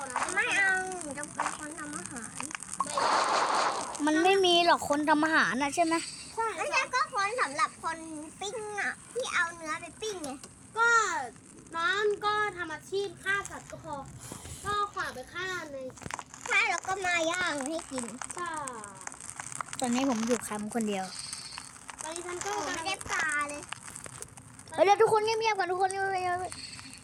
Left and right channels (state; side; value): identical; both; correlation 1.00